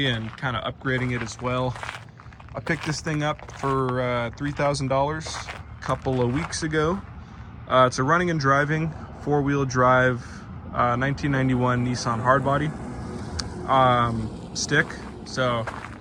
and kind of upgrading it as well. I picked this thing up for $3,000 a couple of weeks ago. It's a running and driving four-wheel drive 1991 Nissan Hardbody stick, so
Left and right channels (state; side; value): identical; both; correlation 1.00